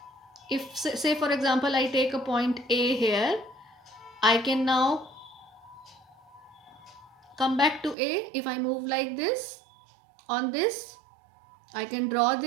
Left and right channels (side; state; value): left; drops out; at 8.0 s